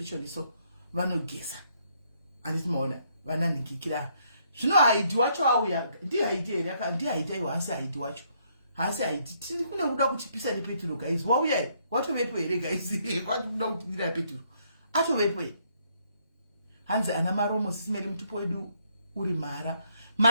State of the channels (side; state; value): both; inverted; correlation -0.70